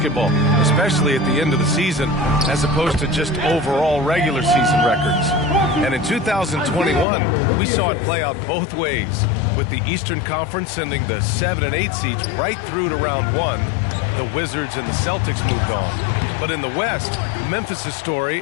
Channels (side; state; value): right; drops out; at 7.1 s